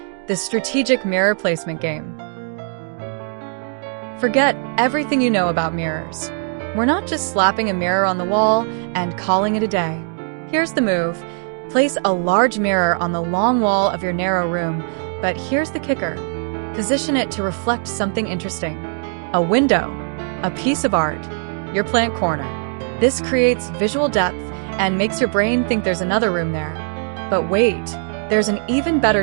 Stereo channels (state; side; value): silent; left; 55 dB below the other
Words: the strategic mirror placement game. Forget everything you know about mirrors. We're not just slapping a mirror on the wall and calling it a day. Here's the move. Place a large mirror on the long wall of your narrow room, but here's the kicker. Position it to reflect something interesting. A window, a piece of art, your plant corner. This creates visual depth and makes your brain think there's another room there. But wait, there's an even